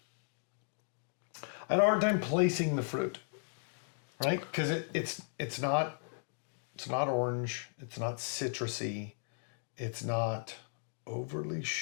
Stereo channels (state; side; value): silent; right; digital silence